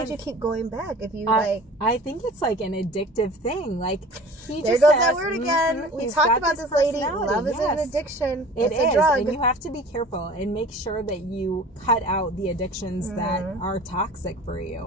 you keep going back? If you I think it's like an addictive thing. Like he there just goes has, that word again. We talked about this, lady. Love is an addiction. It's a drug. And you have to be careful and make sure that you cut out the addictions that are toxic for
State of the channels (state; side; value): normal; both; correlation 0.43